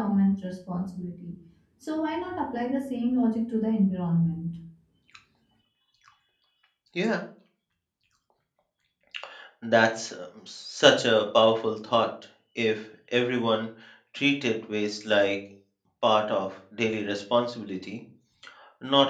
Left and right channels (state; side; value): identical; both; correlation 1.00